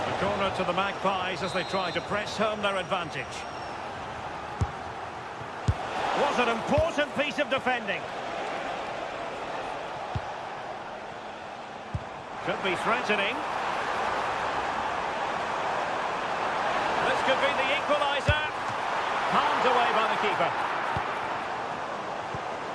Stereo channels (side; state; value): both; identical; correlation 1.00